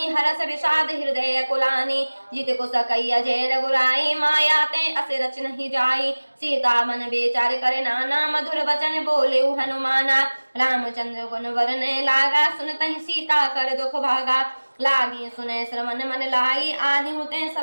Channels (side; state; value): both; inverted; correlation -1.00